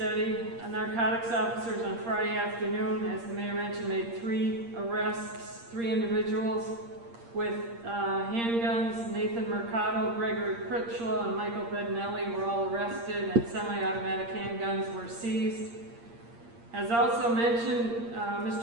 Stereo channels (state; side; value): late; left; 8.6 ms